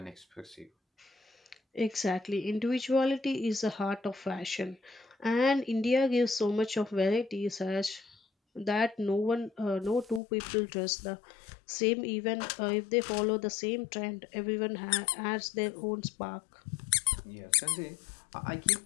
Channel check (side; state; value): right; drops out; at 10.2 s